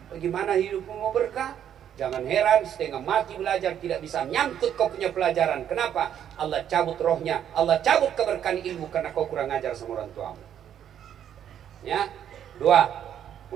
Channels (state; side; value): quieter; left; 9.7 dB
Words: Bagaimana hidupmu mau berkah? Jangan heran, setengah mati belajar tidak bisa nyangkut kau punya pelajaran. Kenapa? Allah cabut rohnya, Allah cabut keberkahan ilmu karena kau kurang ajar sama orang tuamu. Ya, 2,